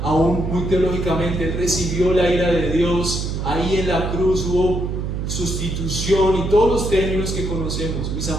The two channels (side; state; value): right; noise; hum, 3 dB below the sound